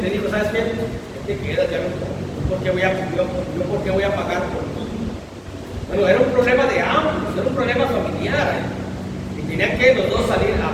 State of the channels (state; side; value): identical; both; correlation 1.00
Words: ¿sabes qué? Te quedas, ya no, ¿por qué voy a pagar por ti? Bueno, era un problema de ambos, era un problema familiar, y tenían que los dos salir